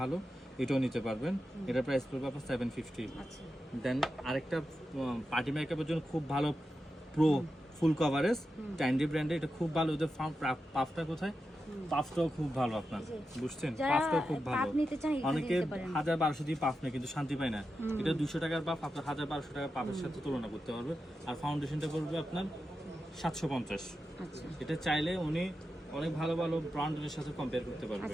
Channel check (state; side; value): normal; both; correlation 0.90